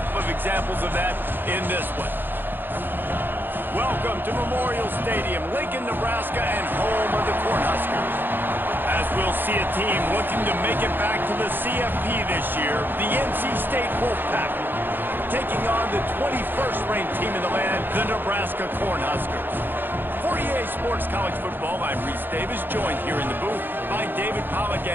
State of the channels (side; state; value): left; late; 0.096 ms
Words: of examples of that in this one. Welcome to Memorial Stadium, Lincoln, Nebraska, and home of the Cornhuskers. As we'll see a team looking to make it back to the CFP this year, the NC State Wolfpack, taking on the 21st ranked team in the land, the Nebraska Cornhuskers. For EA Sports College Football, I'm Reese Davis, joined here in the booth by David Pollack